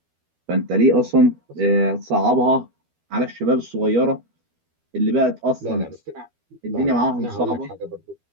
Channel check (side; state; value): left; late; 12 ms